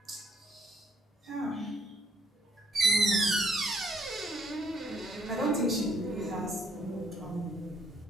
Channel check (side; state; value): both; normal; correlation 0.67